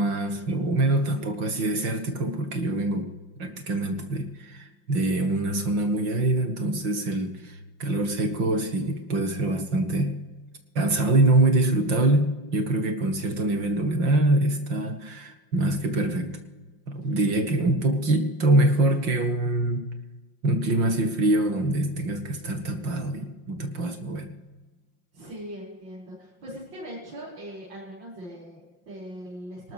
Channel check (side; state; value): left; late; 5.7 ms